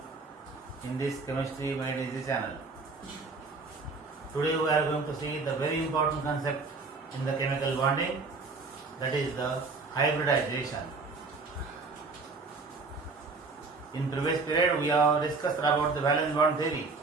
in this Chemistry Made Easy channel. Today we are going to see the very important concept in the chemical bonding, that is the hybridization. In previous period we have discussed about the valence bond theory.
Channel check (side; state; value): left; quieter; 4.0 dB